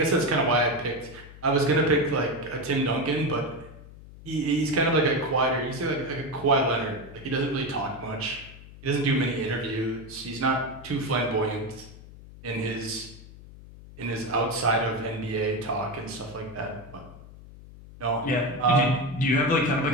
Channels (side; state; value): left; noise; hum, 18 dB below the sound